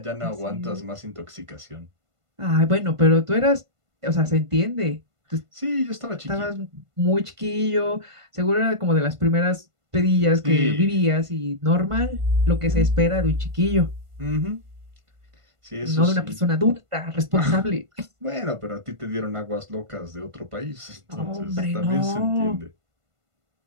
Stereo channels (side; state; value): left; late; 1.5 ms